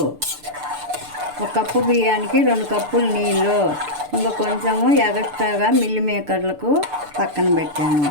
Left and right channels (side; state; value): left; late; 6.8 ms